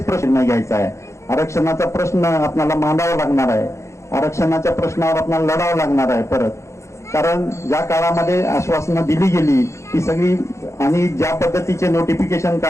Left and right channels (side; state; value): right; late; 0.14 ms